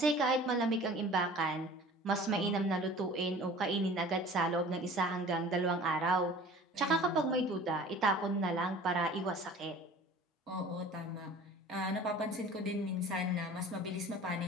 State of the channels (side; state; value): both; normal; correlation 0.44